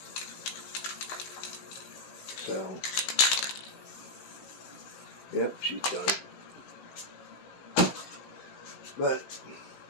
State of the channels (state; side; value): late; right; 16 ms